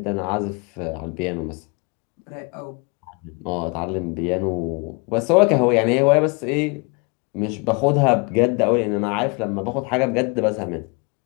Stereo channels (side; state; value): right; quieter; 31.5 dB